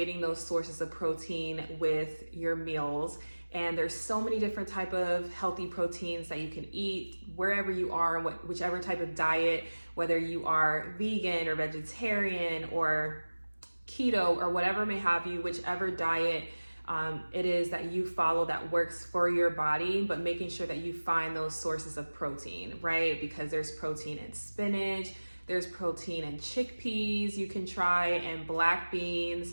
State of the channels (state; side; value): inverted; both; correlation -1.00